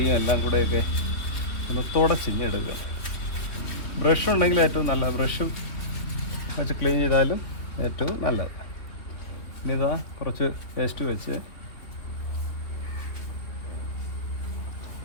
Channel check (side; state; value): right; late; 3.0 ms